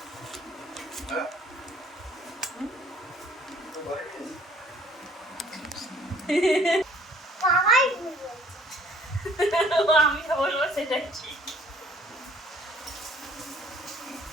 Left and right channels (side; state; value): both; normal; correlation 0.58